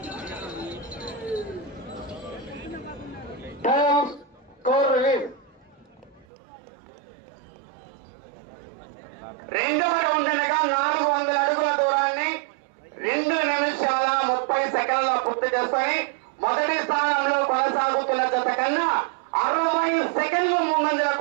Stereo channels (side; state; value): left; drops out; at 6.2 s